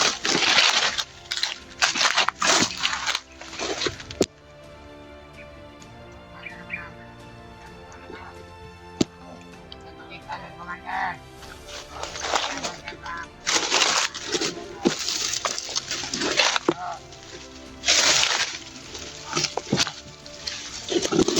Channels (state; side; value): identical; both; correlation 1.00